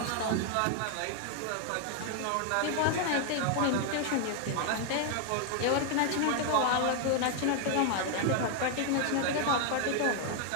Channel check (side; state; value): both; different; correlation 0.00